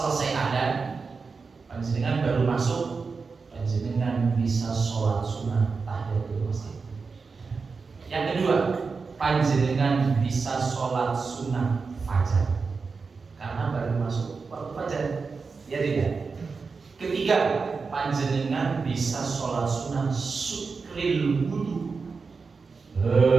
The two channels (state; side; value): quieter; left; 4.7 dB